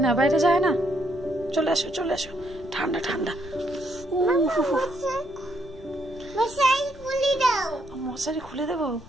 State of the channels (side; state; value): left; noise; rumble, 20 dB below the sound